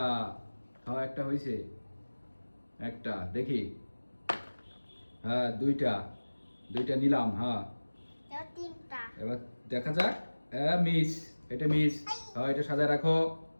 হ্যাঁ একটা হয়েছে, একটা দেখি। হ্যাঁ, দুইটা, দুইটা নিলাম। হ্যাঁ, এবার তিনটা। এবার দেখা যাক। হ্যাঁ মিস, এটা মিস। হ্যাঁ, এটা সাজায় রাখো।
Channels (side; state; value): both; inverted; correlation -1.00